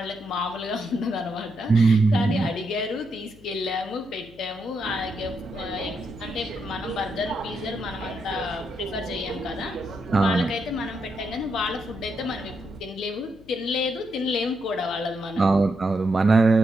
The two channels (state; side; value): noise; left; hum, 23 dB below the sound